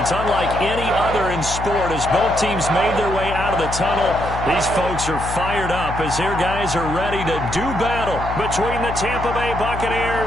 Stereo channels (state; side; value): noise; left; hum, 7 dB below the sound